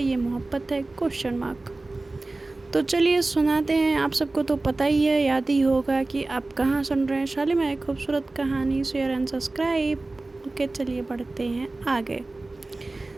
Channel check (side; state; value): left; quieter; 3.1 dB